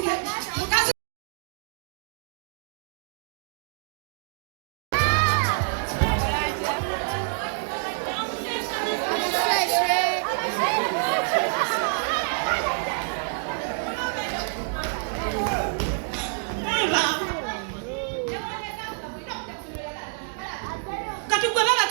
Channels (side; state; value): left; silent; 56 dB below the other